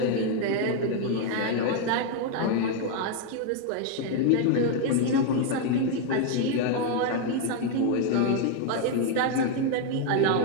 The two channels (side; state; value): both; different; correlation 0.01